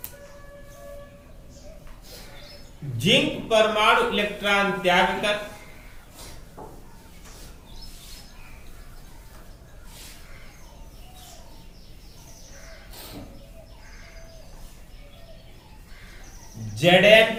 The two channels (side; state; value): both; identical; correlation 1.00